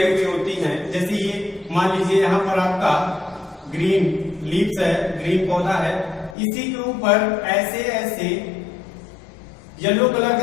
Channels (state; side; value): drops out; right; at 6.4 s